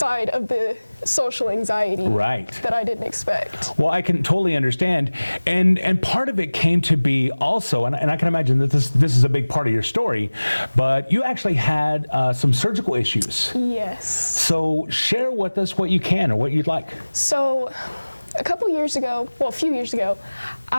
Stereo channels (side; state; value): both; inverted; correlation -1.00